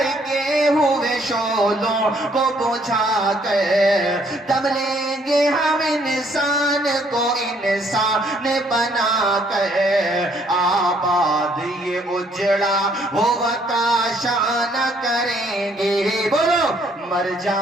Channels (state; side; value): normal; both; correlation 0.66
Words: ہوئے شعلوں کو بجھا کر دم لیں گے ہم انسان کو انسان بنا کر، آباد یہ اجڑا ہوا کاشان کریں گے، بولو مر